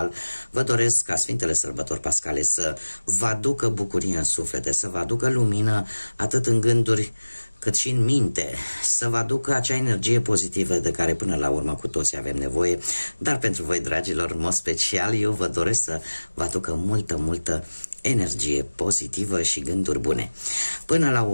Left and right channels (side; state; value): both; inverted; correlation -1.00